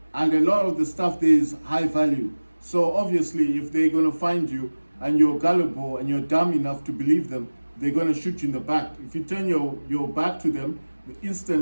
And a lot of the stuff there is high value. So obviously, if they're gonna find you and you're gullible and you're dumb enough to believe them, they're gonna shoot you in the back. If you turn your back to them,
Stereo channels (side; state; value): both; inverted; correlation -1.00